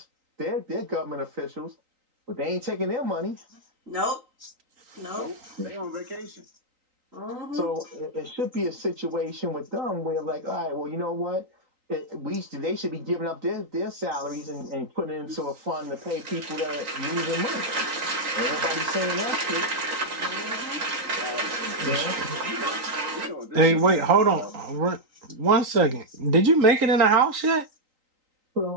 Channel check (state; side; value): late; left; 3.9 ms